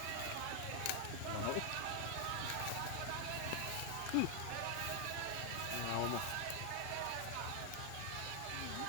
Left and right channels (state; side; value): different; both; correlation 0.00